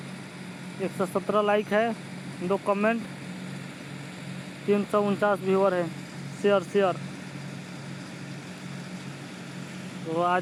117 लाइक है, 2 कमेंट, 349 व्यूअर है। शेयर तो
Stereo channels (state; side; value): identical; both; correlation 1.00